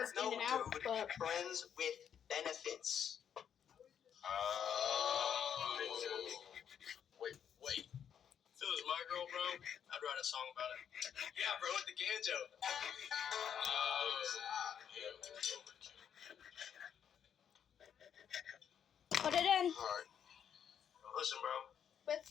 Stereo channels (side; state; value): right; quieter; 8.5 dB